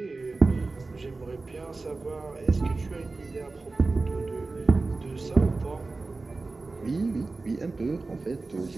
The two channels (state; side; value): quieter; left; 3.6 dB